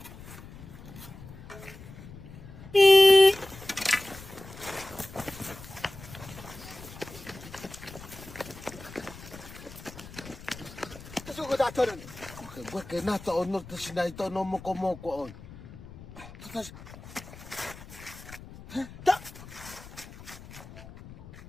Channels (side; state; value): left; noise; rumble, 16 dB below the sound